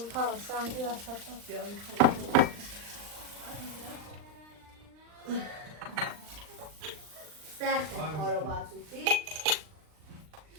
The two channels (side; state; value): left; late; 39 ms